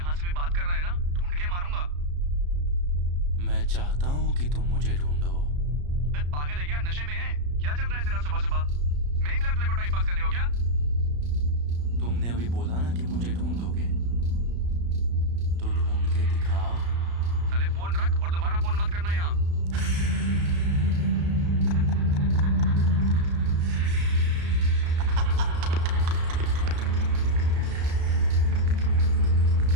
से भी बात कर रहा है ना, ढूंढ के मारूंगा। मैं चाहता हूँ कि तुम मुझे ढूंढो। मैं पागल है क्या? नशे में है क्या? चल रहा है तेरा सुबह सुबह? मैं ही मिला तेरे को टाइम पास करने को क्या? तुमने अभी बोला ना कि मुझे ढूंढोगे, तो ढूंढ के दिखाओ। साले फोन रख और दोबारा फोन मत करना यहाँ।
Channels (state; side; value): late; left; 34 ms